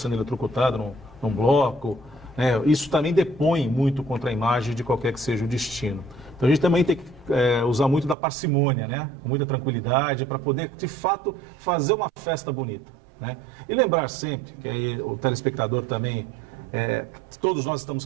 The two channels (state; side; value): drops out; left; at 8.2 s